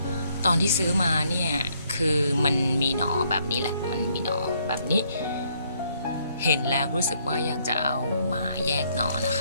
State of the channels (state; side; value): inverted; both; correlation -0.70